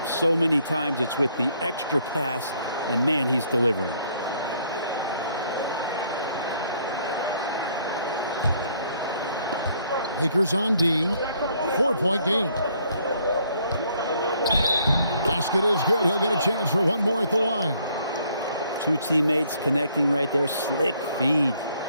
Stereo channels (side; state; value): both; inverted; correlation -0.66